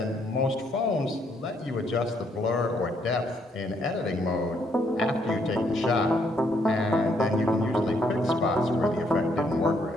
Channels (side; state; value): both; normal; correlation 0.71